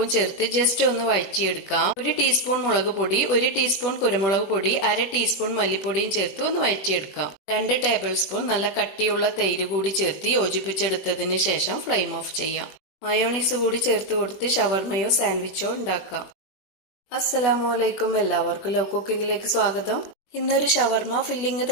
ചേർത്ത് ജസ്റ്റ് ഒന്ന് വഴറ്റിയെടുക്കാം. 1 ടീസ്പൂൺ മുളക് പൊടി, 1 ടീസ്പൂൺ കുരുമുളക് പൊടി, 1/2 ടീസ്പൂൺ മല്ലിപ്പൊടിയും ചേർത്ത് ഒന്ന് വഴറ്റിയെടുക്കാം. 2 ടേബിൾ സ്പൂൺ നല്ല കട്ടിയുള്ള തൈര് കൂടി ചേർത്ത് യോജിപ്പിച്ചെടുത്തതിന് ശേഷം ഫ്ലെയിം ഓഫ് ചെയ്യാം. മയോണീസ് കൂടി ചേർത്ത് കൊടുത്ത് ഷവർമയോ സാൻഡ്വിച്ചോ ഉണ്ടാക്കാം. അസ്സലാമലൈക്കും. എല്ലാവർക്കും ലവ് കുക്കിങ്ങിലേക്ക് സ്വാഗതം. ഇന്നൊരു ഷവർമ ഫില്ലിംഗ്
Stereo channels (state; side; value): late; right; 21 ms